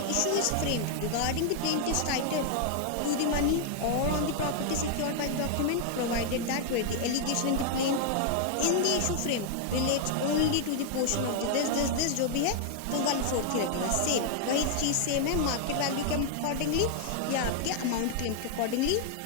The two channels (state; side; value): different; both; correlation 0.00